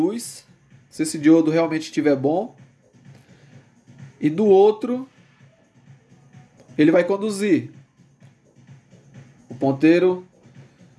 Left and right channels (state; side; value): identical; both; correlation 1.00